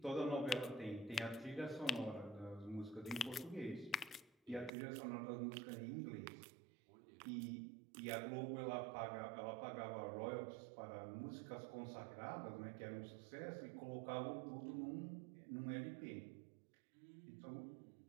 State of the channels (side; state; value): left; drops out; at 4.7 s